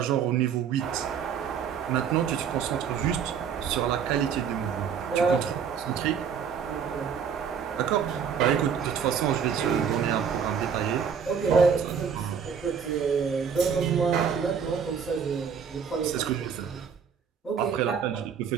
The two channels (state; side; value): quieter; left; 7.1 dB